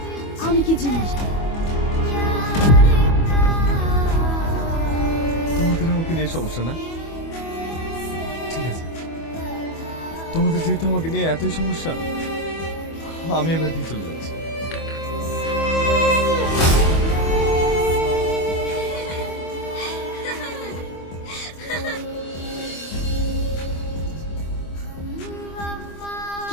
আমি কি জিনিস। তোমাদের আমাকে নিয়ে সমস্যা না, ঠিক আছে। তোমাদের যেহেতু আমাকে নিয়ে এতই সমস্যা, আমি এবার দিয়ে চলে যাচ্ছি।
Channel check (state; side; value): late; right; 25 ms